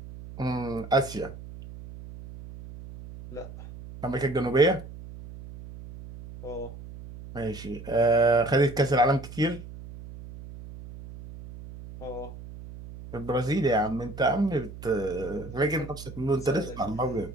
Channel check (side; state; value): right; noise; hum, 14 dB below the sound